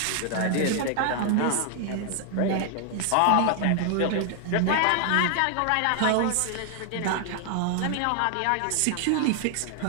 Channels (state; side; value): different; both; correlation 0.00